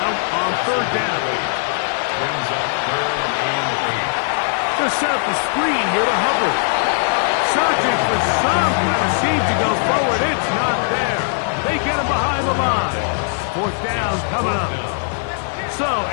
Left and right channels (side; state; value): right; silent; digital silence